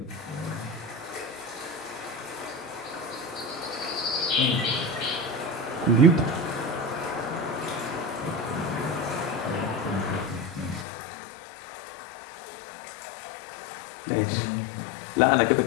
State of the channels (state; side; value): drops out; right; at 10.9 s